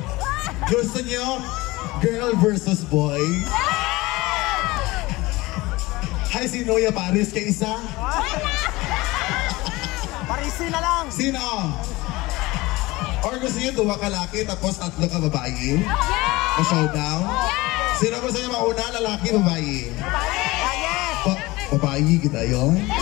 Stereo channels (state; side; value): quieter; right; 20.9 dB